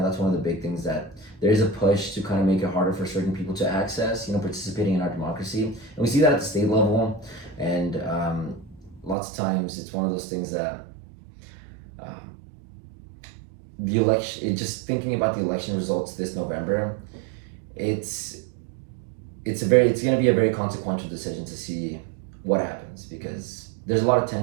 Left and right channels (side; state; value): left; drops out; at 9.2 s